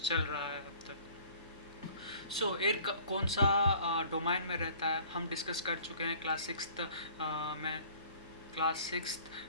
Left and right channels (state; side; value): inverted; both; correlation -0.52